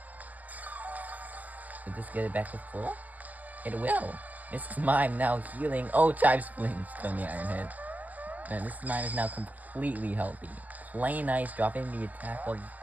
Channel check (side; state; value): left; late; 0.080 ms